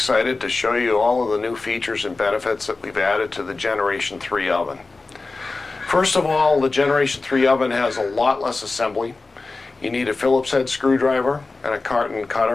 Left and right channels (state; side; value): quieter; right; 3.7 dB